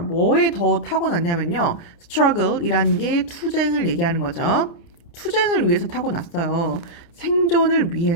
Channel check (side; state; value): right; late; 29 ms